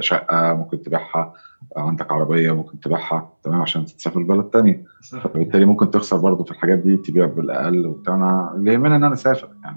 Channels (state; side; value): inverted; both; correlation -1.00